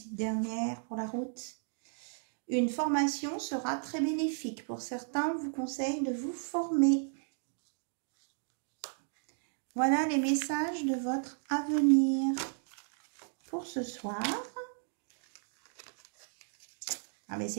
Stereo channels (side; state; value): left; silent; 55 dB below the other